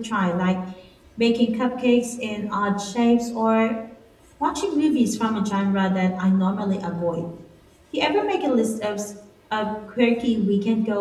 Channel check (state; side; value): identical; both; correlation 1.00